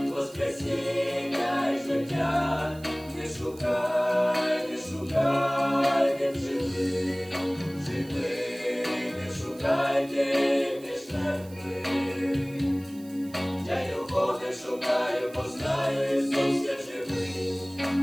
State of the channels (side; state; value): right; noise; hiss, 23 dB below the sound